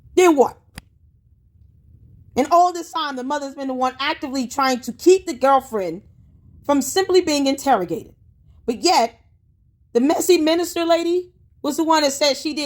Then what? And all this time, the mother's been the one actively trying to keep the girlfriend from simply being interrogated. But yet, the messy minister lady was the one that said she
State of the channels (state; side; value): identical; both; correlation 1.00